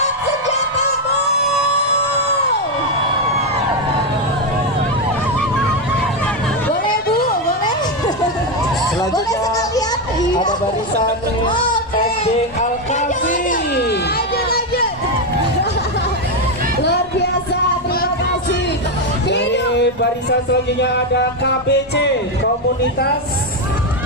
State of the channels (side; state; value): both; normal; correlation 0.06